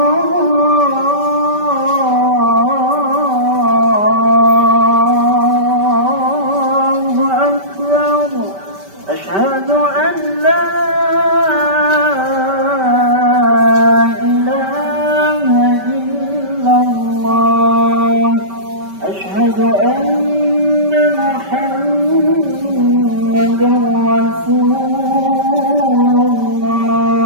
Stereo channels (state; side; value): late; left; 5.2 ms